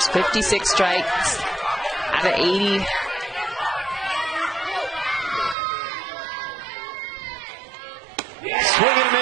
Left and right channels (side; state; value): left; drops out; at 5.6 s